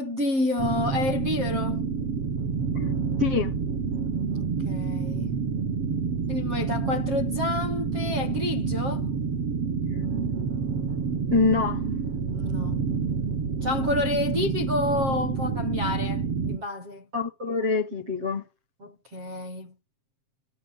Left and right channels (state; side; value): late; left; 7.5 ms